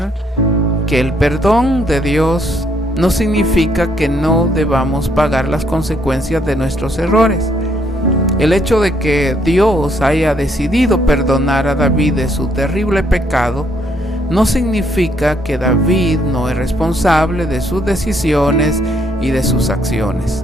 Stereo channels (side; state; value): both; normal; correlation 0.70